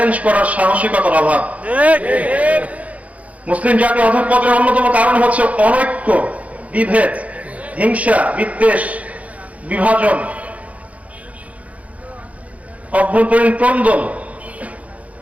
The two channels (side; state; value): left; late; 0.067 ms